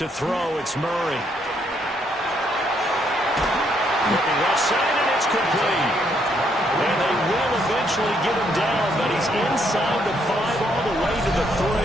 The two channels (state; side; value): normal; both; correlation 0.73